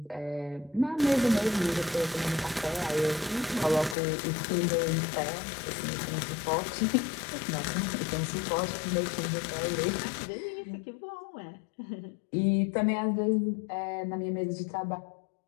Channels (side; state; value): right; drops out; at 4.0 s